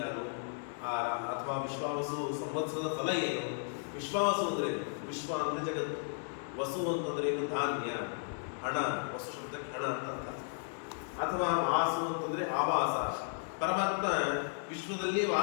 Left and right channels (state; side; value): silent; right; 55 dB below the other